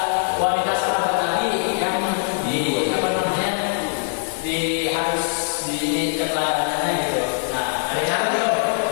wanita sahabat Nabi yang di apa namanya di harus di keteladanannya gitu. Nah, ada yang ada dong.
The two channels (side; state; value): right; silent; digital silence